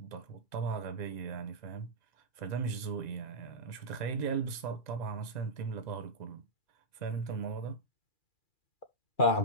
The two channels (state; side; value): late; right; 1.9 ms